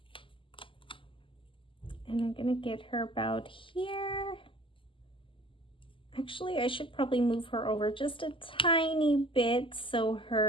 And I'm gonna get her about here. Actually, I should probably move her over just a tiny bit so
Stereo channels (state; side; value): late; right; 0.25 ms